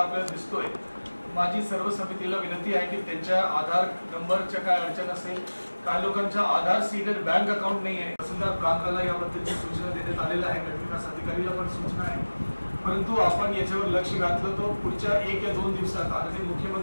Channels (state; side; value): inverted; both; correlation -1.00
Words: दिसतोय, माझी सर्व समितीला विनंती आहे की त्यांच्या आधार नंबरच्या काय अडचण असेल, काही लोकांच्या आधार सीडेड बँक अकाउंट नाही आहे, तहसीलदार प्रांताला याबद्दलची सूचना देण्यात आलेल्या आहे, गटविकास अधिकारीला पण सूचना आहे. परंतु आपण याच्यावर लक्ष घातलं तो पुढच्या 1 या 2 दिवसात आणि